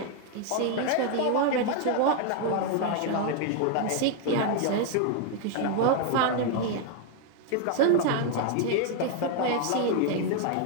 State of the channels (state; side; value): different; both; correlation 0.00